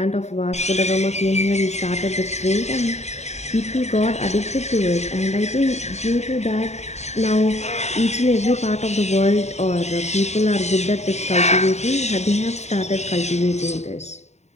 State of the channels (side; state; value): right; late; 0.32 ms